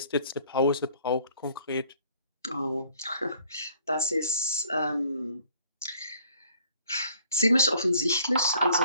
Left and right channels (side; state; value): both; inverted; correlation -0.59